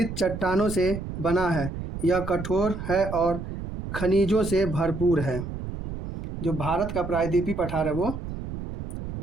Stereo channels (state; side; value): noise; right; rumble, 7 dB below the sound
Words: चट्टानों से बना है। यह कठोर है और खनिजों से भरपूर है। जो भारत का प्रायद्वीपीय पठार है वो